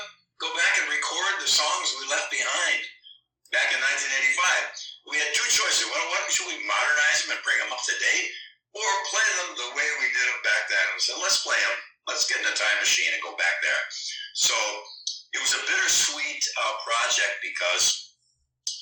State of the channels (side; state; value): both; identical; correlation 1.00